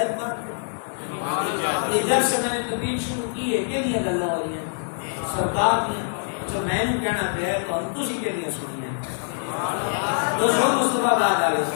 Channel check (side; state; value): right; silent; 62 dB below the other